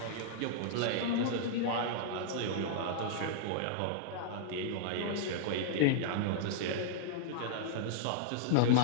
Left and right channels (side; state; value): both; different; correlation -0.01